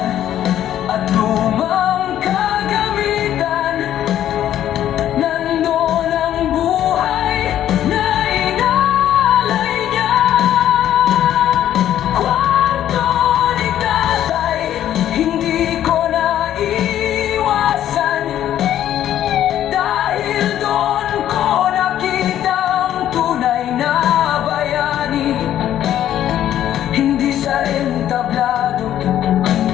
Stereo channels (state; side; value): quieter; right; 11.5 dB